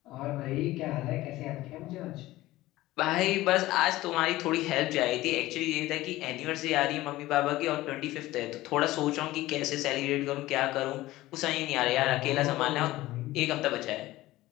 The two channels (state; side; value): quieter; right; 17.2 dB